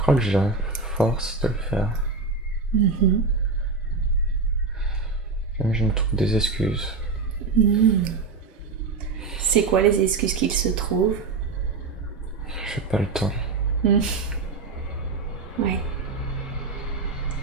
que j'ai la force de le faire. Même je me trouve des excuses. C'est quoi les excuses qu'il se trouve? J'ai pas le temps. Oui.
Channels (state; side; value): quieter; left; 4.2 dB